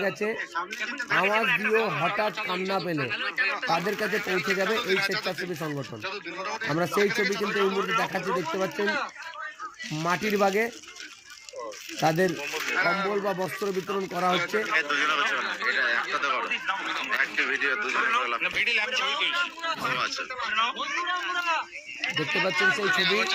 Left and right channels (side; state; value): both; identical; correlation 1.00